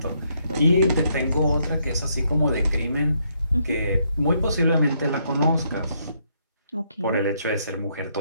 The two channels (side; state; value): both; inverted; correlation -0.73